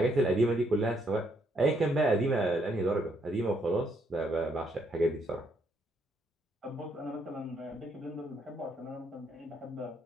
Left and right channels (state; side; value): normal; both; correlation 0.73